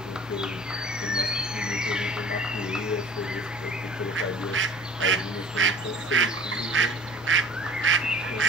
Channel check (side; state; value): both; normal; correlation 0.47